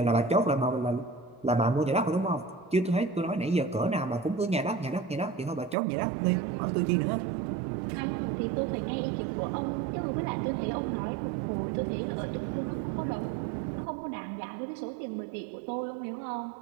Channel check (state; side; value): drops out; left; at 5.8 s